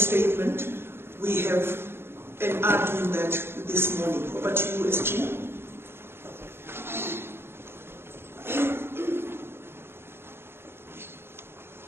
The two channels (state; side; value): late; left; 0.11 ms